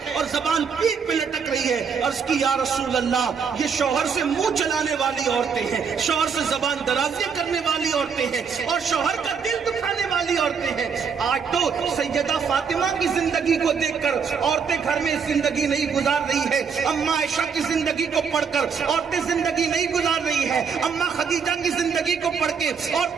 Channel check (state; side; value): quieter; left; 6.2 dB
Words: اور زبان پیٹھ پہ لٹک رہی ہے؟ عرض کی یا رسول اللہ یہ شوہر سے منہ چلانے والی عورتیں ہیں، شوہر سے زبان درازیاں کرنے والی عورتیں ہیں اور شوہر کا دل دکھانے والی عورتیں ہیں۔ آج تو سیدہ فاطمہ کی زندگی کو دیکھ کر عورتیں گھر میں زندگی نہیں گزار رہی ہے، اماں عائشہ کی زندگی کو پڑھ کر عورتیں زندگی نہیں گزار رہی ہے، اماں خدیجہ کی زندگی کو پڑھ کے